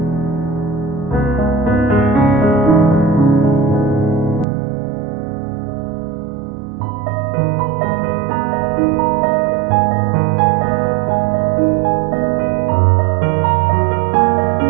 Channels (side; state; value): left; drops out; at 4.5 s